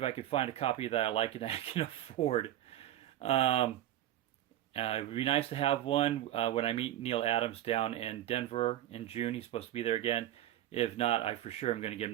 I can find a copy that I like and I can afford. It would be nice to have one when I meet Neal Adams down in Denver in June. He's supposed to be there again. If not, I for sure am going to get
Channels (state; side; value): quieter; left; 13.1 dB